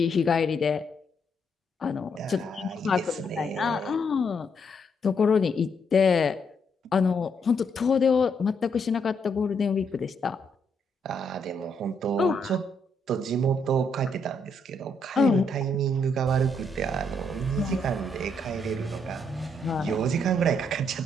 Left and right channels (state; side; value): normal; both; correlation 0.75